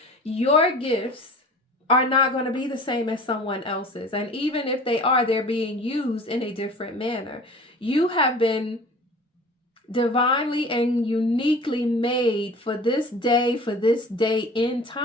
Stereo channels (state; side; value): normal; both; correlation 0.42